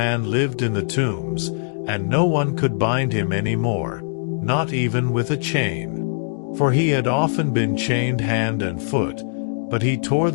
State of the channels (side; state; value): right; silent; digital silence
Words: lived in the tombs, and no one could bind him any more, not even with a chain. For he had often been chained hand and foot, but he tore